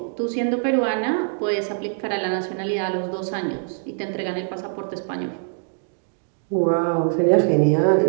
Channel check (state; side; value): silent; left; digital silence